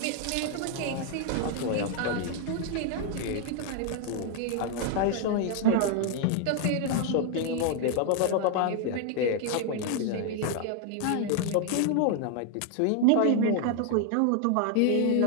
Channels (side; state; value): both; different; correlation 0.00